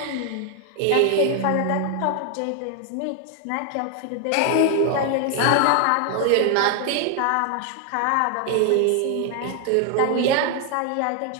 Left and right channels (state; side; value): different; both; correlation 0.00